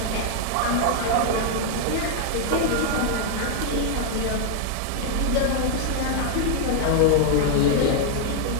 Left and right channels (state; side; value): different; both; correlation 0.00